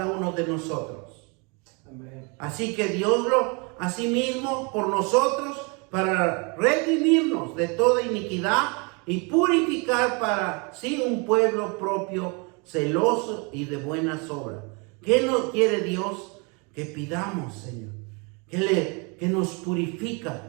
uno de nosotros. Amén. Así que Dios lo, asimismo, por nosotros, para redimirnos de toda iniquidad y purificar para sí un pueblo propio, celoso y de buenas obras. ¿Qué nos quiere Dios? Que pidamos, Señor, que nos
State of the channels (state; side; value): quieter; left; 31.7 dB